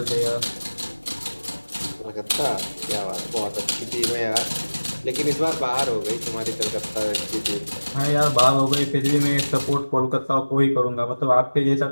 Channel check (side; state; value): both; inverted; correlation -1.00